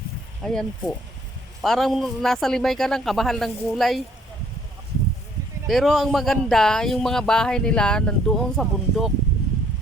Ayan po. Parang nasa Limay ka lang, kabahal ng gulay. Pero ang maganda, yung mga bahay nila nandoon sa bundok.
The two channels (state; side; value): normal; both; correlation 0.62